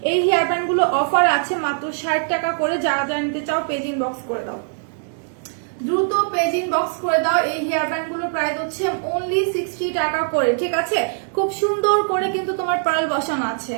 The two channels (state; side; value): silent; left; digital silence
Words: এই হেয়ার ব্যান্ড গুলো অফার আছে মাত্র 60 টাকা করে। যারা যারা নিতে চাও পেজ ইনবক্স করে দাও, দ্রুত পেজ ইনবক্স করে দাও। এই হেয়ার ব্যান্ড গুলোর প্রাইস হচ্ছে অনলি 60 টাকা করে, ঠিক আছে। খুব সুন্দর করে কিন্তু তোমার পার্ল বসানো আছে,